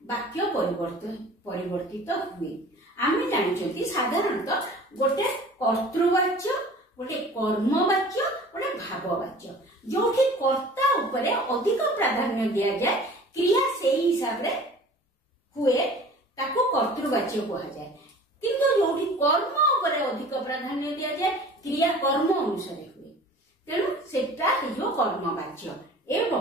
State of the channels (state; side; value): normal; both; correlation 0.44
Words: ବାକ୍ୟ ପରିବର୍ତ୍ତିତ ହୁଏ। ଆମେ ଜାଣିଛନ୍ତି ସାଧାରଣତଃ ଗୋଟେ କର୍ତ୍ତୃବାଚ୍ୟ, ଗୋଟେ କର୍ମବାଚ୍ୟ, ଗୋଟେ ଭାବବାଚ୍ୟ। ଯୋଉଠି କର୍ତ୍ତା ଉପରେ ଅଧିକ ପ୍ରାଧାନ୍ୟ ଦିଆଯାଏ, କ୍ରିୟା ସେଇ ହିସାବରେ ହୁଏ, ତାକୁ କର୍ତ୍ତୃବାଚ୍ୟ କୁହାଯାଏ। କିନ୍ତୁ ଯୋଉଠି କର୍ମ ଉପରେ ଅଧିକ ପ୍ରାଧାନ୍ୟ ଦିଆଯାଏ, କ୍ରିୟା କର୍ମ ଅନୁସାରେ ହୁଏ, ତେଣୁ ସେଟା ହେଇଯିବ କର୍ମବାଚ୍ୟ।